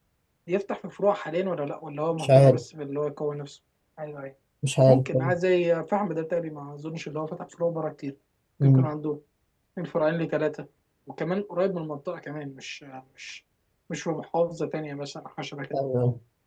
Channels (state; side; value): identical; both; correlation 1.00